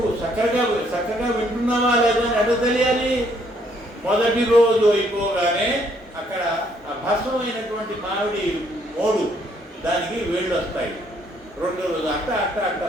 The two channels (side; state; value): both; normal; correlation 0.68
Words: చక్కగా వింటున్నావా లేదా అని ఎట్లా తెలియాలి? మొదటి రోజు అయిపోగానే అక్కడ ఆ భస్మమైనటువంటి మామిడి మోడు దానికి వేళ్ళు వస్తాయి. 2వ రోజు అట్ట